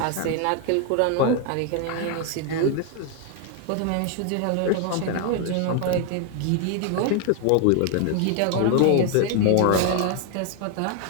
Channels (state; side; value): different; both; correlation 0.01